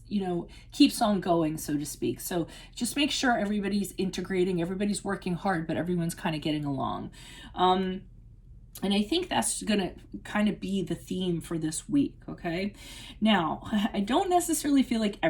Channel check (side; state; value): both; identical; correlation 1.00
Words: you know, keeps on going, so to speak. So just make sure everybody's integrating, everybody's working hard, but everyone's kind of getting along. And I think that's going to kind of be the theme for this week, okay? Now, I don't necessarily feel like